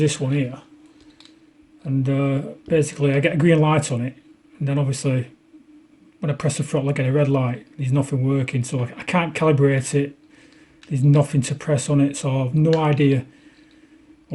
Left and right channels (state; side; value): identical; both; correlation 1.00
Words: one here, and basically I get a green light on it, and then obviously when I press the throttle I get a red light. There's nothing working, so I can't calibrate it. There's nothing to press on it, so I've no idea